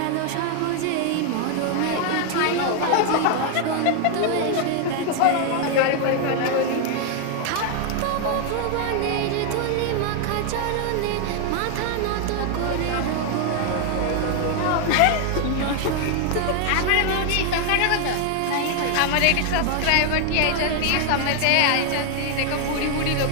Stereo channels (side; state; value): both; different; correlation 0.00